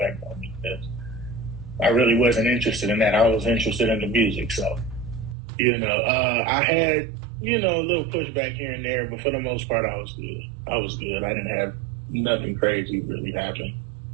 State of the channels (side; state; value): left; drops out; at 5.4 s